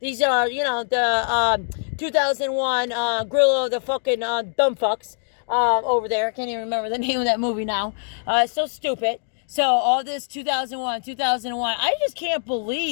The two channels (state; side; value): silent; right; digital silence